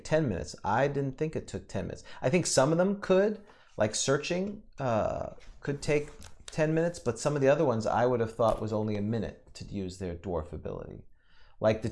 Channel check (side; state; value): both; identical; correlation 1.00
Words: 10 minutes. I didn't think it took 10 minutes. I think some of them could, like searching, could take 10 minutes, but some of the other ones I would have thought was only a minute to use their dwarf ability. Like